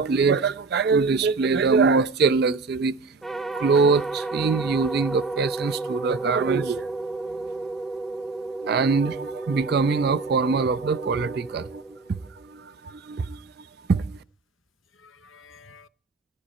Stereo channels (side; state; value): left; quieter; 4.1 dB